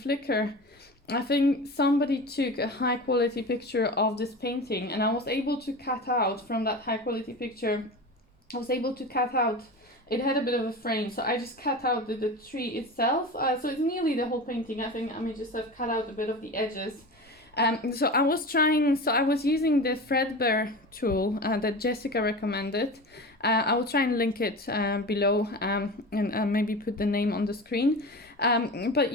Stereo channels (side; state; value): both; normal; correlation 0.30